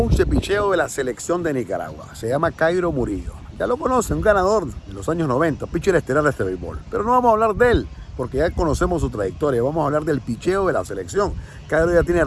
de picheo de la selección de Nicaragua. Se llama Cairo Murillo. Ya lo conocen, un ganador de los años 90, pitcher estelar de este béisbol. Pero no vamos a hablar de él, porque ya conocemos su trayectoria. Vamos a hablar del picheo de la selección. Cairo ya tiene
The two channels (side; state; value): both; identical; correlation 1.00